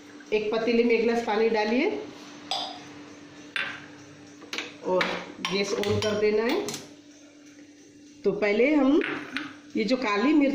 एक पतीले में एक गिलास पानी डालिए और गैस ऑन कर देना है। तो पहले हम ये जो काली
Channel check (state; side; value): identical; both; correlation 1.00